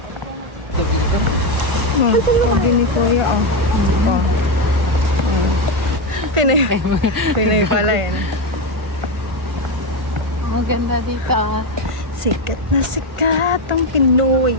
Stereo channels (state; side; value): late; left; 1.3 ms